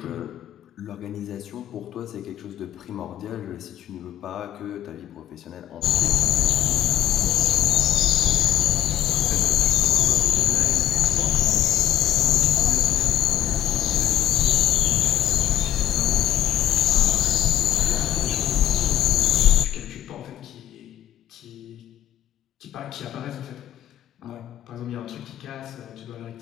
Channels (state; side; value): quieter; right; 12.2 dB